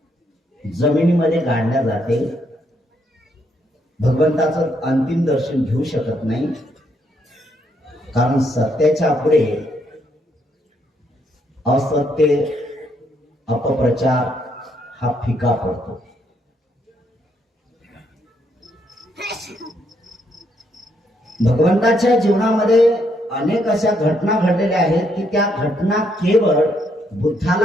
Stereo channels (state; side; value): normal; both; correlation 0.74